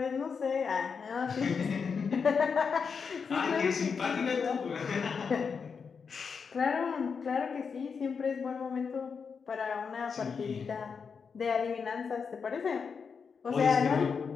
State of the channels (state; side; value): quieter; right; 5.8 dB